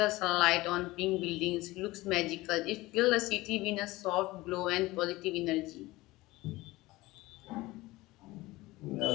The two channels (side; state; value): right; quieter; 19.6 dB